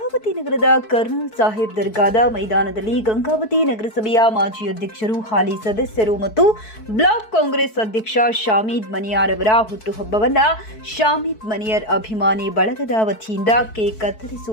ನಗರದ ಕರ್ನಲ್ ಸಾಹೇಬ್ ದರ್ಗಾದ ಮೈದಾನದಲ್ಲಿ ಗಂಗಾವತಿ ನಗರಸಭೆಯ ಮಾಜಿ ಅಧ್ಯಕ್ಷರು, ಹಾಲಿ ಸದಸ್ಯರು ಮತ್ತು ಬ್ಲಾಕ್ ಕಾಂಗ್ರೆಸ್ ಅಧ್ಯಕ್ಷ ಶಾಮಿದ್ ಮನಿಯಾರ್ ಅವರ ಹುಟ್ಟುಹಬ್ಬವನ್ನು ಶಾಮಿದ್ ಮನಿಯರ್ ಅಭಿಮಾನಿ ಬಳಗದ ವತಿಯಿಂದ ಕೇಕ್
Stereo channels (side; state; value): right; late; 4.6 ms